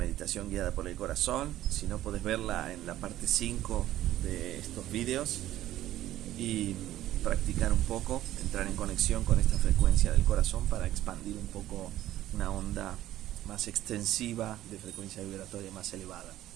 guiada por el corazón. Si no, podés verla en la parte 5 de estos videos y practicar un poco, entrar en conexión con esta frecuencia del corazón para expandir un poco una onda más extensiva de frecuencia vibratoria más elevada.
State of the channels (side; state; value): left; quieter; 13.8 dB